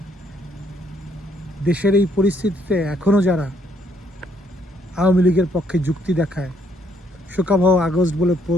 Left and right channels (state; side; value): normal; both; correlation 0.69